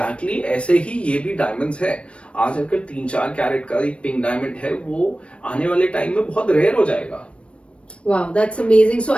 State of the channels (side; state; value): right; late; 0.060 ms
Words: ऐसे ही ये भी diamonds है. आज अगर 3-4 कैरेट का एक पिंक डायमंड है, वो आने वाले टाइम में बहुत रेयर हो जाएगा. Wow, that's amazing. So,